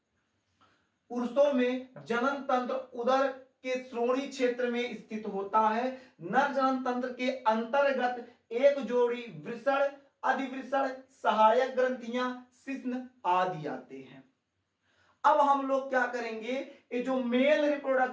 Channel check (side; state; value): both; identical; correlation 1.00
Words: पुरुषों में जनन तंत्र उदर के श्रोणि क्षेत्र में स्थित होता है। नर जनन तंत्र के अंतर्गत एक जोड़ी वृषण, अधिवृषण, सहायक ग्रंथियां, शिश्न आदि आते हैं। अब हम लोग क्या करेंगे, ये जो मेल